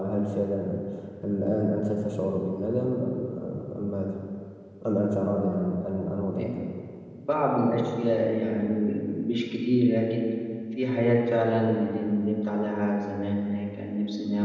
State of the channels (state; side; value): identical; both; correlation 1.00